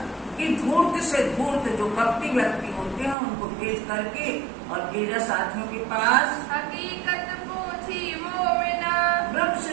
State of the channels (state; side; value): drops out; left; at 3.2 s